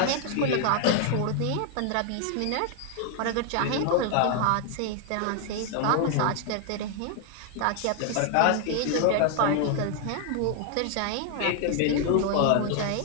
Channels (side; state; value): both; different; correlation 0.00